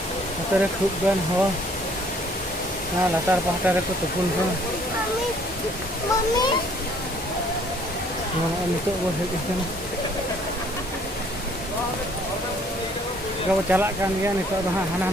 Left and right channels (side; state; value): both; normal; correlation 0.60